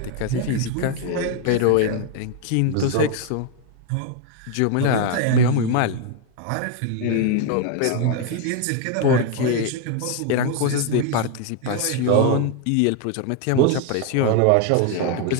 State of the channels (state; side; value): different; both; correlation 0.01